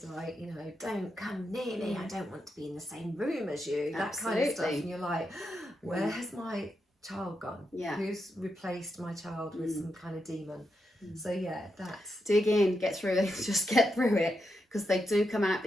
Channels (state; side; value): normal; both; correlation 0.85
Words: like, you know, don't come near me, I don't want to be in the same room as you, that kind of stuff, and you're like, where has my child gone? Who's replaced my child with some kind of demon? So that's, dig in, get through it, just get through it, because they do come out